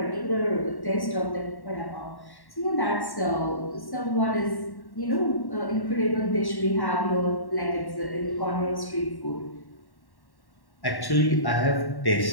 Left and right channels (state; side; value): late; right; 1.1 ms